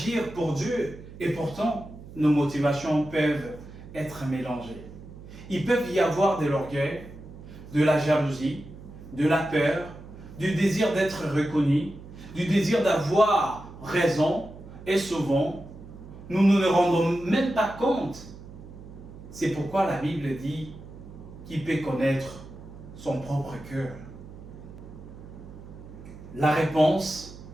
pour Dieu, et pourtant nos motivations peuvent être mélangées. Il peut y avoir de l'orgueil, de la jalousie, de la peur, du désir d'être reconnu, du désir d'avoir raison, et souvent, nous ne nous rendons même pas compte. C'est pourquoi la Bible dit qu'il peut connaître son propre cœur. La réponse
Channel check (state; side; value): noise; right; hum, 16 dB below the sound